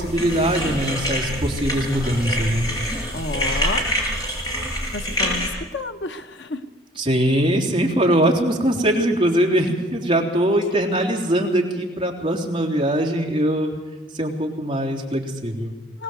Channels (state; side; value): normal; both; correlation 0.54